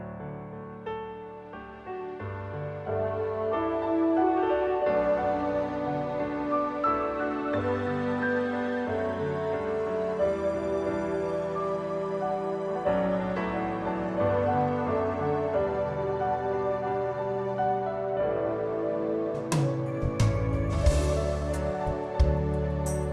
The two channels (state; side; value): identical; both; correlation 1.00